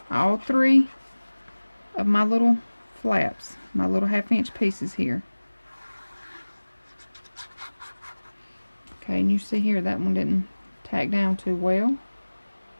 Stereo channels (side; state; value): both; inverted; correlation -1.00